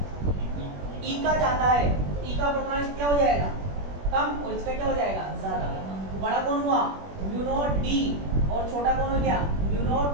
ई का ज्यादा है, ई का अपर्तनांक क्या हो जाएगा, कम, और इसका क्या हो जाएगा, ज्यादा। तो बड़ा कौन हुआ, म्यू नॉट डी, और छोटा कौन हो गया, mu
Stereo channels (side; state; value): left; late; 21 ms